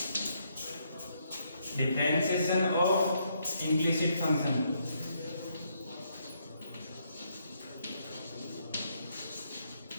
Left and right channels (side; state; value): both; inverted; correlation -0.75